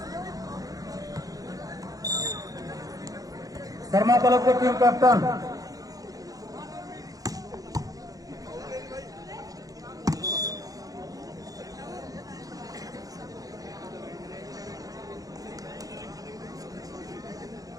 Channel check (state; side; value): late; left; 0.17 ms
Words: शर्मा क्लब के टीम कैप्टन